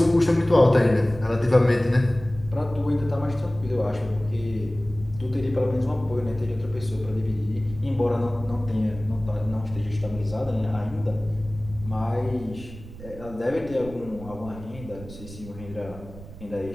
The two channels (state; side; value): noise; right; rumble, 15 dB below the sound